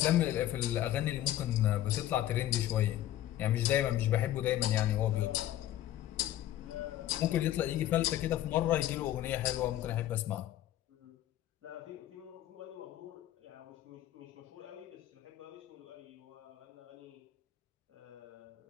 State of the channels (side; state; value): right; quieter; 13.0 dB